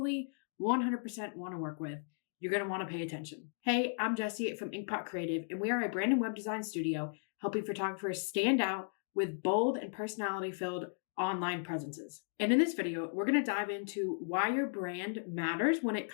100% want to work with, you're going to want to pay attention. Hey, I'm Jessie from Inkpot Creative, and we are a brand and web design studio helping photographers stand out with bold and personality-filled online presences. And in this video, we're going to dive into why your brand matters when it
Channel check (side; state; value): right; silent; digital silence